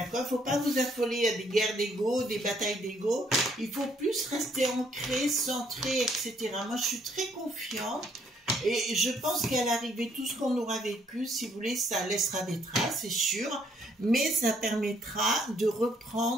faut pas vous affoler à des guerres d'ego, des batailles d'ego. Il faut plus rester ancré, centré, etc. Moi, je suis très confiante et je pense qu'à l'arrivée, tout ce qu'on aura vécu, si vous voulez, ça laissera des traces, c'est sûr, mais ça permettra de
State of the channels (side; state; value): both; normal; correlation 0.67